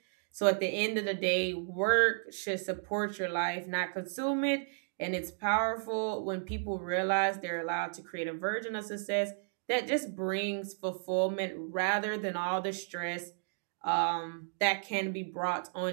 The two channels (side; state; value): left; silent; digital silence